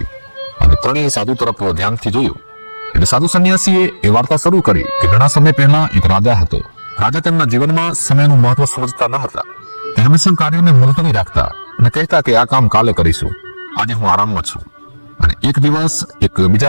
અને ત્રણેય સાધુ તરફ ધ્યાનથી જોયું એટલે સાધુ સંન્યાસીએ એ વાર્તા શરૂ કરી કે ઘણા સમય પહેલા એક રાજા હતો રાજા તેમના જીવનમાં સમયનું મહત્વ સમજતા ન હતા. તે હંમેશા કાર્યોને મુલતવી રાખતા અને કહેતા કે આ કામ કાલે કરીશું, આજે હું આરામમાં છું. અને એક દિવસ એક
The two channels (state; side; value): inverted; both; correlation -1.00